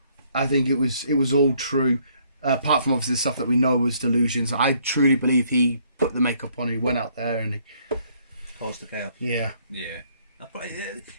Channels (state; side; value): inverted; both; correlation -0.66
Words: I think it was all true. Apart from obviously the stuff that we know was delusions. I truly believe he put the makeup on and he went out there and he caused the chaos. Yeah. Yeah.